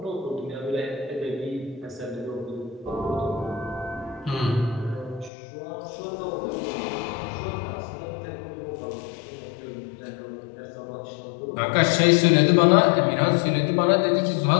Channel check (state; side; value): drops out; right; at 5.3 s